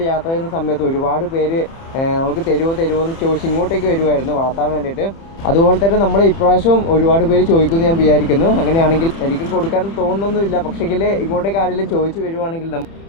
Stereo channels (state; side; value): late; right; 30 ms